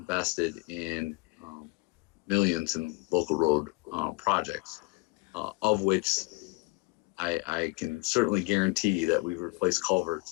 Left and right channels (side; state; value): right; quieter; 26.5 dB